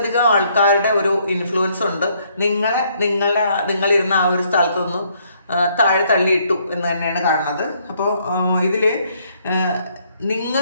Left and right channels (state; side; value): inverted; both; correlation -0.68